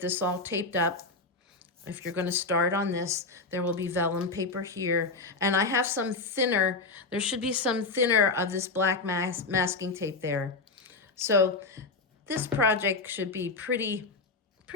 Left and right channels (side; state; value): right; quieter; 3.7 dB